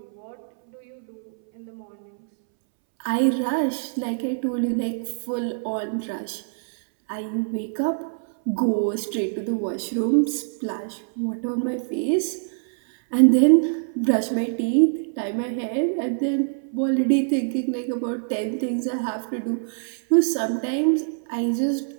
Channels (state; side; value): silent; left; 62 dB below the other